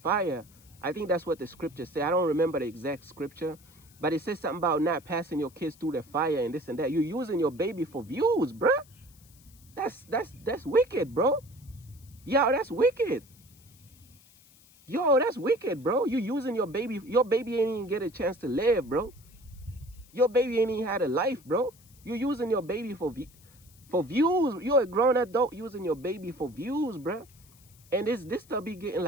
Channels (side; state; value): left; noise; hiss, 26 dB below the sound